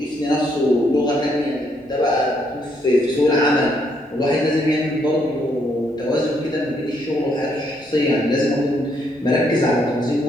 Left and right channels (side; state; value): both; normal; correlation 0.73